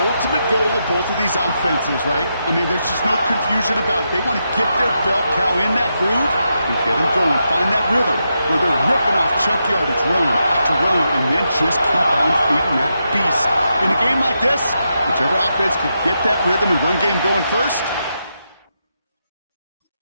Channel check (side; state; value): both; inverted; correlation -0.85